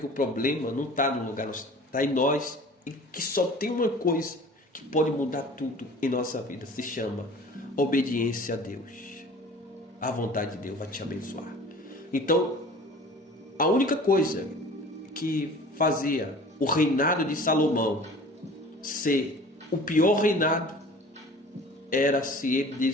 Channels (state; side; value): normal; both; correlation 0.45